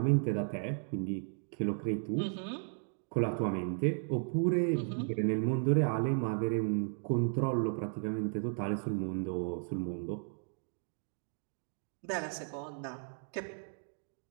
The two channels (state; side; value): silent; left; 54 dB below the other